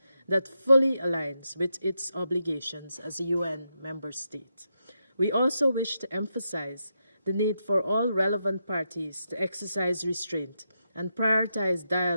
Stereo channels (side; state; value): both; inverted; correlation -0.84